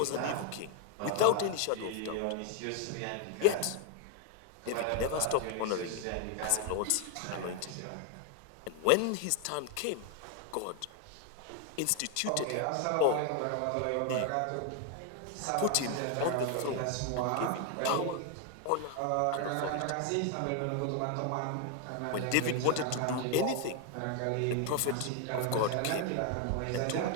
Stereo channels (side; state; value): both; different; correlation 0.01